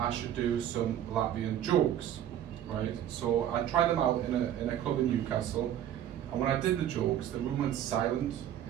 should do some Latvian jokes, right? So I tried them out in a club in Newcastle, and when I did the jokes, the room went silent.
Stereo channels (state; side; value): quieter; left; 10.9 dB